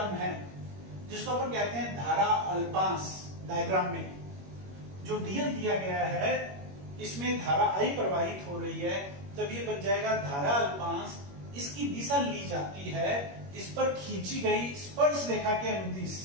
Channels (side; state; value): left; late; 21 ms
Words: है जिसको अपन कहते हैं धारा अल्पांश। डायग्राम में जो डीएल दिया गया है इसमें धारा आई प्रवाहित हो रही है, तब ये बन जाएगा धारा अल्पांश। इसकी दिशा ली जाती है, इस पर खींची गई स्पर्श रेखा के अनुदिश